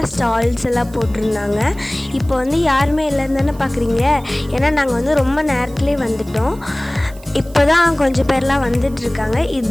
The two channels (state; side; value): noise; right; hiss, 24 dB below the sound